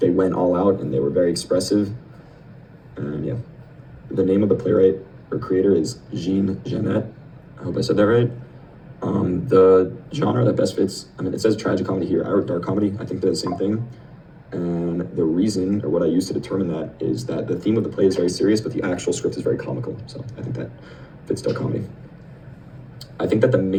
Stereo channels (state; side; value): identical; both; correlation 1.00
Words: went all out, and they were very expressive. And yeah, the name of the playwright or creator is Jean Genet. I hope I said that right. The genre that best fits, I mean, it says tragic comedy here. I wrote dark comedy. I think they're the same thing. And the reason, or what I use to determine that, is that the theme of the play is very serious, but the actual script is very comical. So I think that fits dark comedy. I think that the